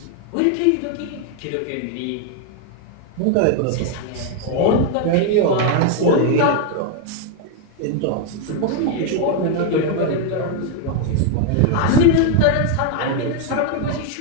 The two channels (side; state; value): both; different; correlation 0.00